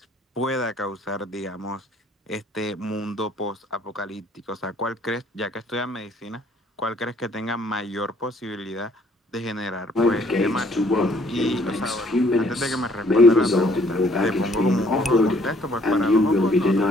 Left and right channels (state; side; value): normal; both; correlation 0.62